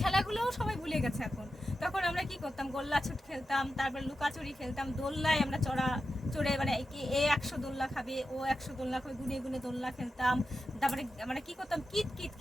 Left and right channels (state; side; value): normal; both; correlation 0.91